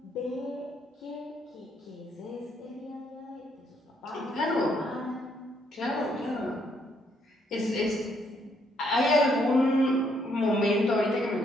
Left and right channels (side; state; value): both; normal; correlation 0.72